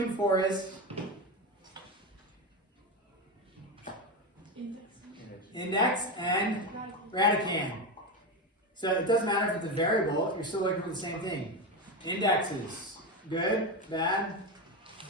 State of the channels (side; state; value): both; normal; correlation 0.16